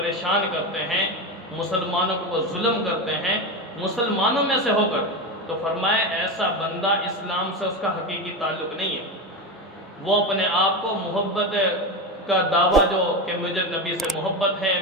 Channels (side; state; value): both; normal; correlation 0.18